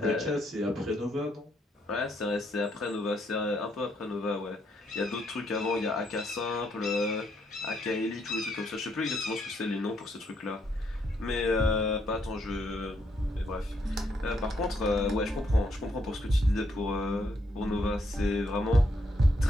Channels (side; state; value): both; normal; correlation 0.74